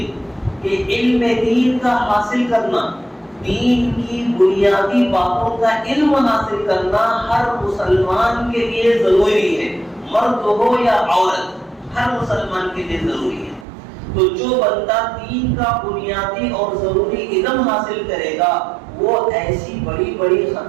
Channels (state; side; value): drops out; left; at 13.7 s